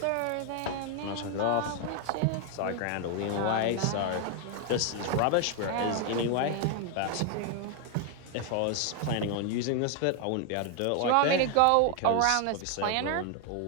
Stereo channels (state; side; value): different; both; correlation 0.01